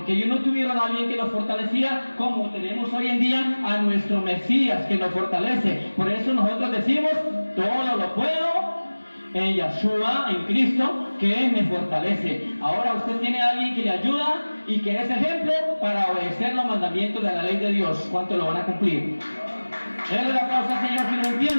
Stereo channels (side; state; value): both; inverted; correlation -1.00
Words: ellos no tuvieron a alguien que los fortalecía como tenemos hoy en día a nuestro Mesías que nos fortalece. Por eso nosotros decimos, todo lo puedo en Yahshua, en Cristo, que me fortalece. Ahora usted tiene a alguien que le ayuda y que es ejemplo para obedecer los mandamientos de la ley de Dios. ¿Cuánto lo van a cumplir? Denle la causa al Señor si lo